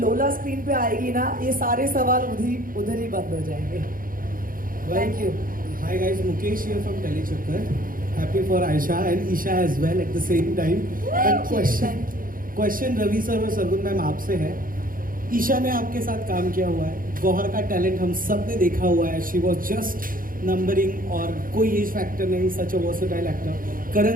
लोला स्क्रीन पे आएगी ना, ये सारे सवाल उधर ही बंद हो जाएंगे। Thank you. Hi guys, Mukesh here from Telechakkar. Happy for Aisha and Isha as well at the same time. But question Ravi sir और सरगुन मैम आपसे है। ईशा ने आपके साथ काम किया हुआ है, गौहर का टैलेंट हम सब ने देखा हुआ है, शी वॉज जस्ट नंबरिंग और कोई एज फैक्टर नहीं, such a versatile actor.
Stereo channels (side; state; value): left; late; 0.41 ms